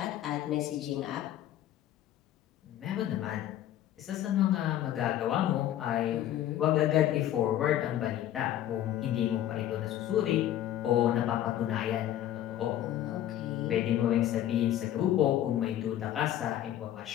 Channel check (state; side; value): quieter; right; 12.1 dB